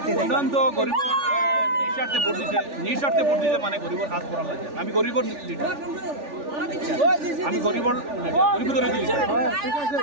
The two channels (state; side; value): late; left; 3.4 ms